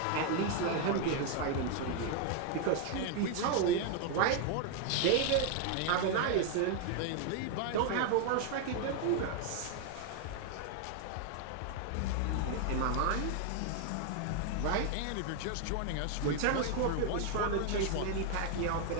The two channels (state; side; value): different; both; correlation 0.00